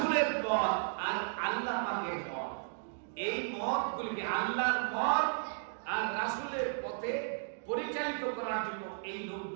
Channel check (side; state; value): left; silent; digital silence